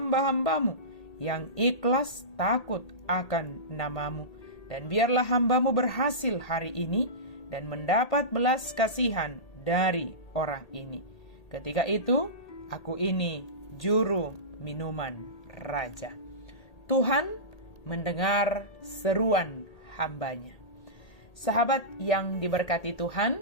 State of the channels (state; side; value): late; right; 1.8 ms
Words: yang ikhlas takut akan namamu. Dan biarlah hambamu berhasil hari ini dan mendapat belas kasihan dari orang ini. Ketika itu, aku ini juru minuman raja. Tuhan mendengar seruan hambanya. Sahabat yang diberkati